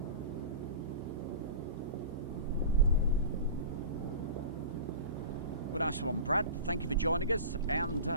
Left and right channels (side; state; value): both; inverted; correlation -0.34